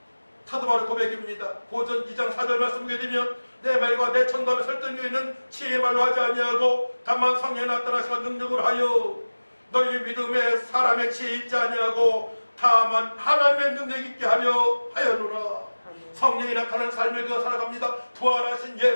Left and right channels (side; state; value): both; inverted; correlation -1.00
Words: 사도 바울의 고백입니다. 고전 2장 4절 말씀 보게 되면 내 말과 내 천담에 설득력 있는 지혜의 말로 하지 아니하고 다만 성령에 나타나시가 능력을 하여 너희 믿음에 사람의 지혜 있지 아니하고 다만 하나님의 능력 있게 하려노라. 성령이 나타난 삶을 그어 살아갑니다. 부활하신